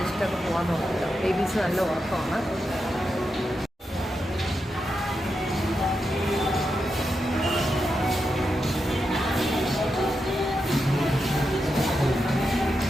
പോകാൻ നോക്കില്ല. ബേബീസ് നല്ല ഉറക്കമാണ്.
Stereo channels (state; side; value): normal; both; correlation 0.87